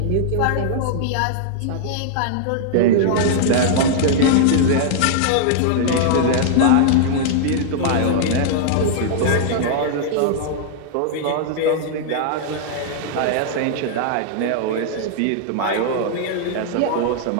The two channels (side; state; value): both; different; correlation -0.01